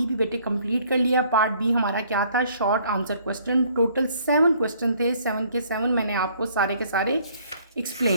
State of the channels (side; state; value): both; inverted; correlation -0.61